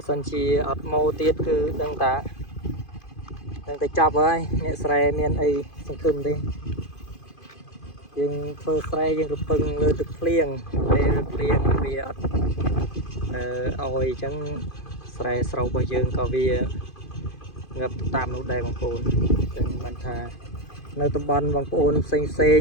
សិនជាអត់ម៉ូទៀតគឺដឹងតែចាប់ហើយអ្នកស្រែមានអីសង្ឃឹមទេយើងធ្វើស្រែយើងរពឹងលើទឹកភ្លៀងពេលភ្លៀងវាអត់ឲ្យអញ្ចឹងស្រែស្រូវរបស់យើងក៏វាងឹបតាមនោះដែរបងប្អូនអញ្ចឹងបានថានៅតំបន់បងប្អូនផ្សេង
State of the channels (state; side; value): late; right; 2.5 ms